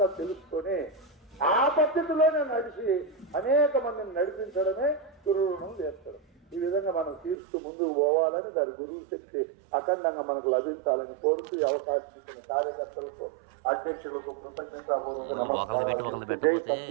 తెలుసుకొని ఆ పద్ధతిలోనే నడిచి అనేక మందిని నడిపించడమే గురు రుణం తీర్చడం. ఈ విధంగా మనం తీర్చు ముందుకు పోవాలని దాని గురువు శక్తి అఖండంగా మనకు లభించాలని కోరుతూ ఈ అవకాశం ఇచ్చిన కార్యకర్తలకు, అధ్యక్షులకు కృతజ్ఞతాపూర్వక నమస్కారాలు. జై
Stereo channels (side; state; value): left; drops out; at 7.4 s